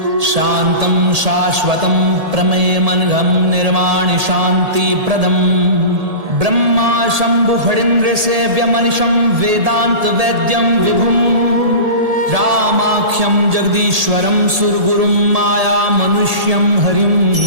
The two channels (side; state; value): left; late; 1.8 ms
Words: शांतं शाश्वतं प्रमेयमनघं निर्वाणि शांति प्रदम ब्रह्मा शंभु फणीन्द्र सेव्यमनिशं वेदांत वैद्यं विभुं रामाख्यं जगदीश्वरं सुरगुरुं माया मनुष्यं हरिं